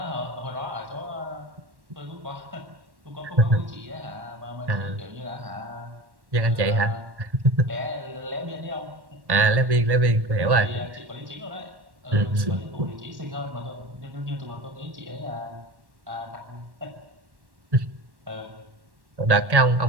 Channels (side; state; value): left; late; 1.1 ms